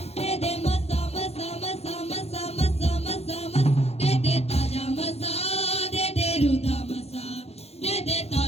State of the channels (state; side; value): late; right; 0.30 ms